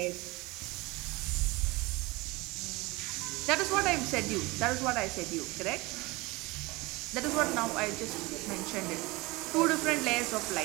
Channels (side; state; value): left; quieter; 23.2 dB